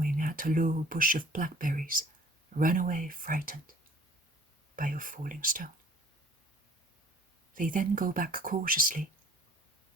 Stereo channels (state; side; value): normal; both; correlation 0.54